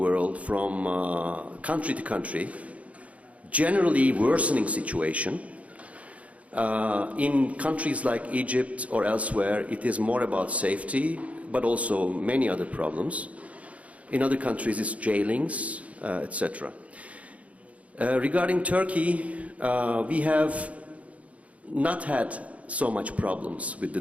from country to country, generally worsening situation. In countries like Egypt or elsewhere, it is more about safety, but also many other problems. In other countries, it's jailings, etc. Regarding Turkey, we have not had so much problems with the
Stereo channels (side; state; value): left; late; 0.066 ms